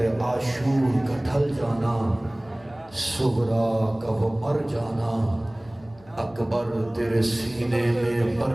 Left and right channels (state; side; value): noise; left; hum, 26 dB below the sound